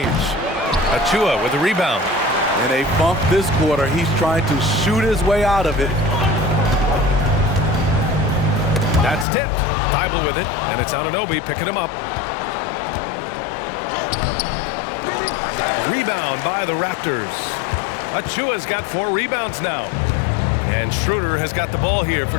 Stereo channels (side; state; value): right; drops out; at 9.2 s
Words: Achua with the rebound. In a bump this quarter, he's trying to shoot his way out of it. That's tipped. Thibault with it, and it's Anunoby picking him up. Rebound by the Raptors. Achua's got 4 rebounds now. And Schroeder has got the ball here for